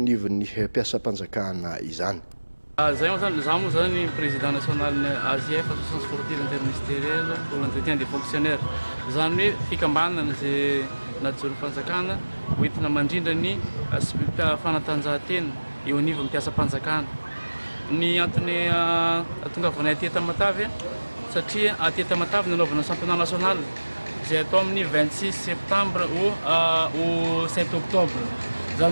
anivon'ny mpiasam-panjakana izany. Zay moa zany président national ny AJF association sportive interministérielle pour l'entretien des fonctionnaires zany hoe fikambanana zay najoro fanjakana hoentina mandrindra ny fanatanjahantena eo anivon'ny mpiasam-panjakana. Ny antony atongavanay aty Tamatavy satria aty Tamatavy nanaovana championnat national zay atao amin'ny 26 septembre au 7 octobre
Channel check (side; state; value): both; inverted; correlation -1.00